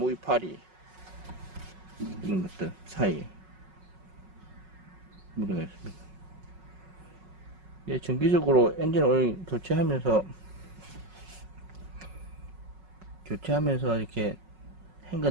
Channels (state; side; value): late; left; 5.4 ms